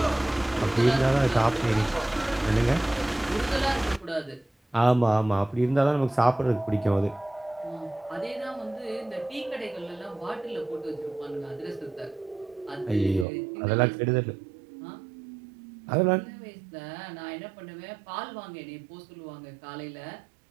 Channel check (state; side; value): drops out; left; at 13.2 s